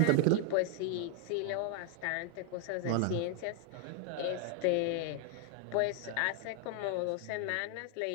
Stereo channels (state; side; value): different; both; correlation 0.00